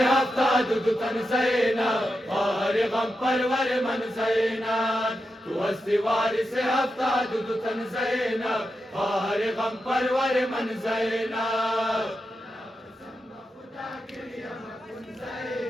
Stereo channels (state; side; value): normal; both; correlation 0.88